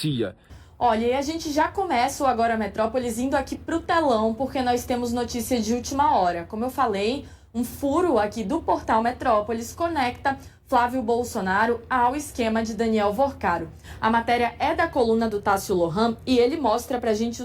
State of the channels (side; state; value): both; identical; correlation 1.00